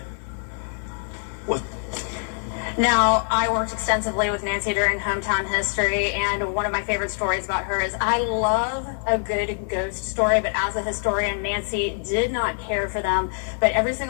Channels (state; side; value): silent; right; 62 dB below the other